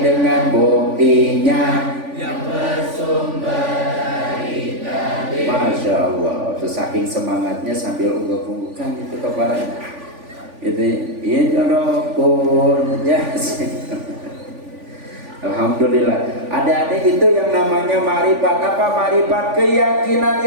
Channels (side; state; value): left; late; 3.5 ms